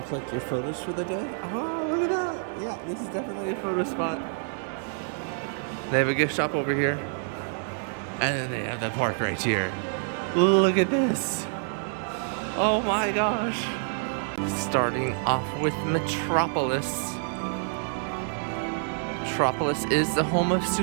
collect your photos for the day. Oh, look at that. Yeah, this is definitely a photo spot. They have a gift shop over here. And then they have the park right here. Look at this. Oh my gosh. Starting off with Metropolis. Metropolis is the home of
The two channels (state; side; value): silent; left; 60 dB below the other